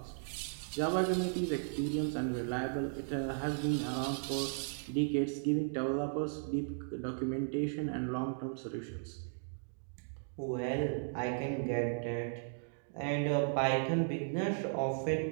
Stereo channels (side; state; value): left; silent; digital silence